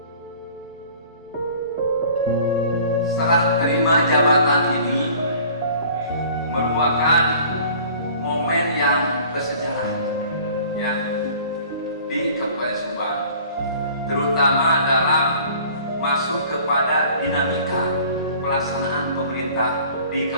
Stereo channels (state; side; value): inverted; both; correlation -0.49